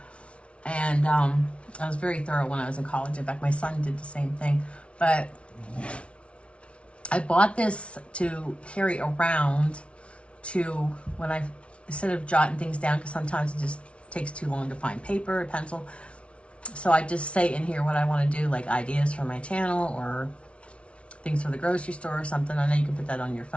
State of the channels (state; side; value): late; right; 0.061 ms